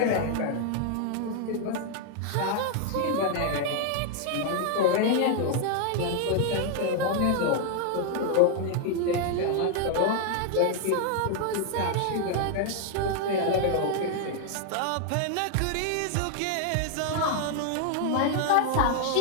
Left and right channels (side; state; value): both; different; correlation 0.00